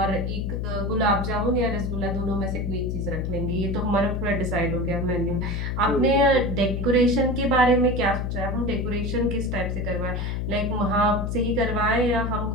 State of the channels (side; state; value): left; noise; hum, 2 dB below the sound